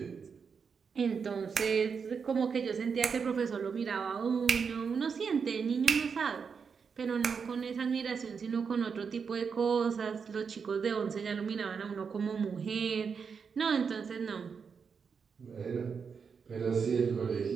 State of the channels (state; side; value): quieter; left; 6.0 dB